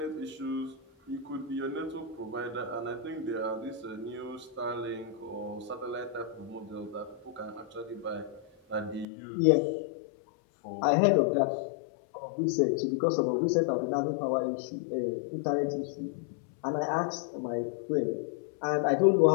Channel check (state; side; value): drops out; right; at 9.1 s